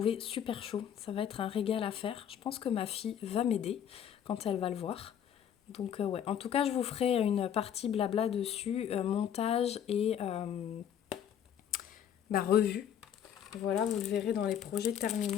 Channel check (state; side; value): quieter; right; 9.2 dB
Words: super chaud. Ça va être un régal à faire. Je pense que ma fille va m'aider quand elle va le voir. Donc ouais, en tout cas je vous ferai une partie blabla dessus, montage et revue. Voilà, vous le verrez dans les projets